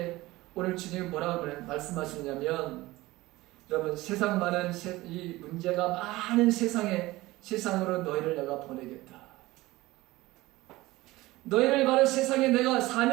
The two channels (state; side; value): quieter; left; 19.1 dB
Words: 오늘 주님이 뭐라고 말씀하시냐면 여러분 세상 많은 이 문제가 많은 세상으로 너희를 내가 보내겠다. 너희를 바로 세상에 내가